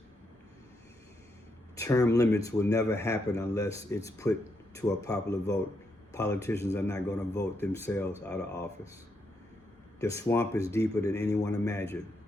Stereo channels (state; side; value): normal; both; correlation 0.80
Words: Term limits will never happen unless it's put to a popular vote. Politicians are not going to vote themselves out of office. The swamp is deeper than anyone imagined.